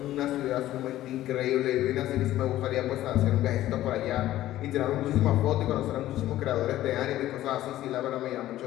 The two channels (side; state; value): right; quieter; 14.2 dB